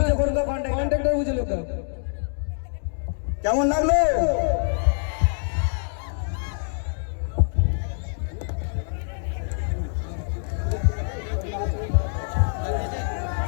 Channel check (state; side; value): silent; right; digital silence